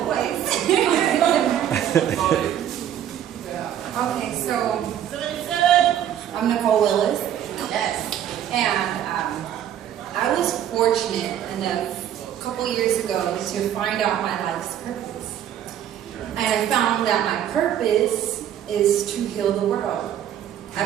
voice. Okay, so I'm Nicole Willis. Yes. And I was fortunate enough a couple years ago to find out my life's purpose. And I found that my purpose is to heal the world.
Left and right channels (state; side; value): quieter; left; 10.5 dB